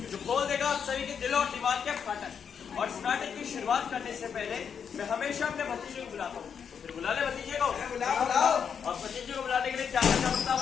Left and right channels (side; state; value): right; quieter; 7.2 dB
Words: जो खोल देगा आप सभी के दिल और दिमाग के फाटक। और इस नाटक की शुरुआत करने से पहले मैं हमेशा अपने भतीजे को बुलाता हूँ। फिर बुला ले भतीजे को। बुलाओ। और भतीजे को बुलाने के लिए क्या करना पड़ता है